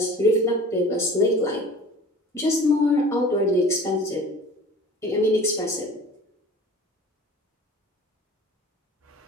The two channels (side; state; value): both; normal; correlation 0.43